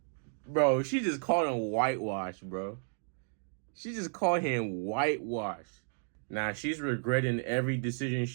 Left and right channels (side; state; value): left; silent; digital silence